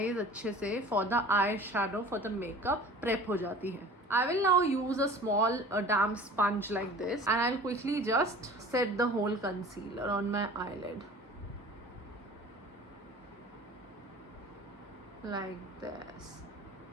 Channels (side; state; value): both; normal; correlation 0.43